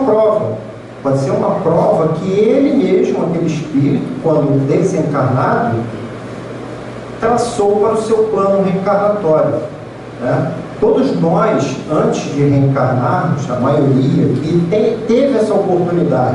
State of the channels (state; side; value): identical; both; correlation 1.00